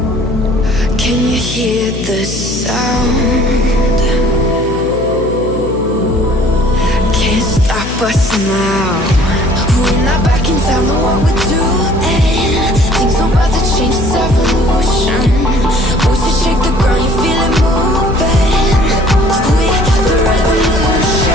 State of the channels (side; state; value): left; noise; hum, 8 dB below the sound